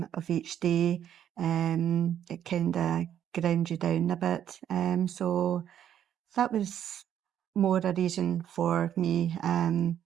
each day. It kind of ground you down a bit. So that was more a reason for me.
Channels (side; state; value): left; quieter; 10.0 dB